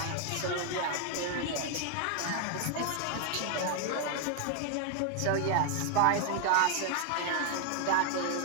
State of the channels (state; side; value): different; both; correlation 0.00